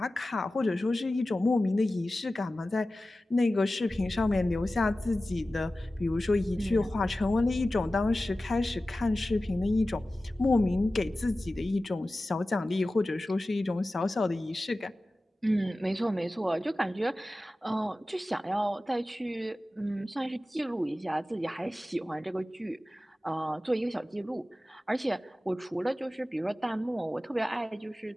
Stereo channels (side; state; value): both; normal; correlation 0.95